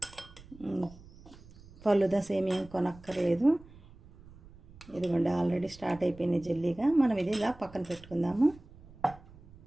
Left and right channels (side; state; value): right; noise; rumble, 21 dB below the sound